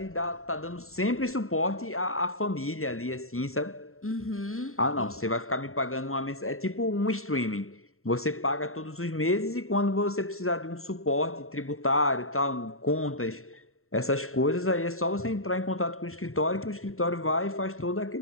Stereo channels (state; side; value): late; right; 0.62 ms